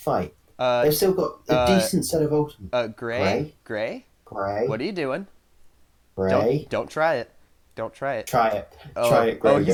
they've still got a decent set of ultimates. Gray? What Gray. are you doing? Gray. Don't try it. Don't try it. Try it. Try Oh, it, Gray. he's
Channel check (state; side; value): identical; both; correlation 1.00